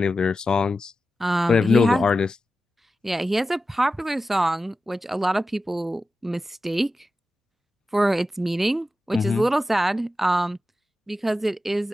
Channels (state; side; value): normal; both; correlation 0.92